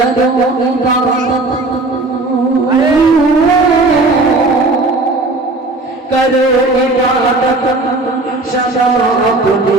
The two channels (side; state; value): left; quieter; 3.1 dB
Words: करो इबादत सदा अपने